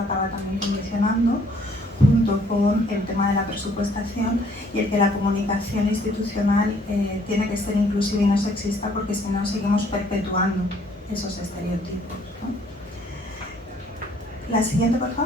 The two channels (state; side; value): normal; both; correlation 0.62